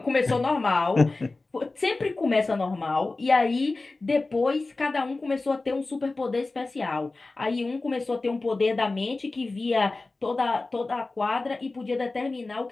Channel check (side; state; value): right; quieter; 3.4 dB